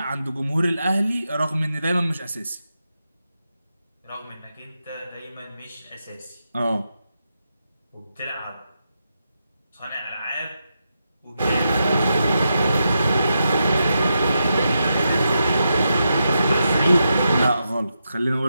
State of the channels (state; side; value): inverted; both; correlation -0.86